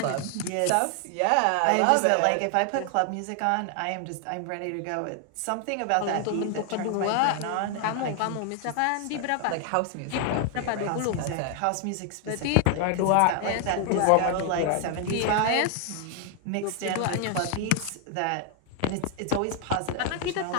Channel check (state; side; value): different; both; correlation 0.00